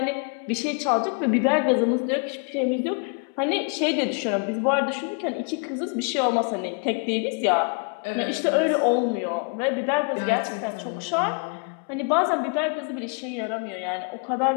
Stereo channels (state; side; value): quieter; right; 38.7 dB